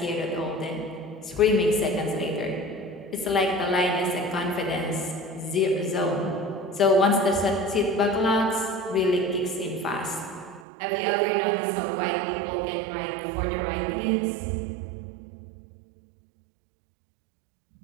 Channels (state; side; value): drops out; left; at 10.7 s